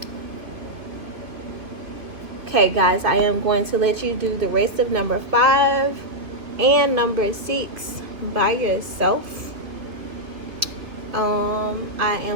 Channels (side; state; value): left; late; 2.8 ms